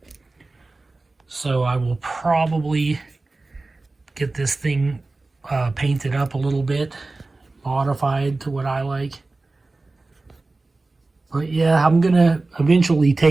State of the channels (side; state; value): left; quieter; 3.3 dB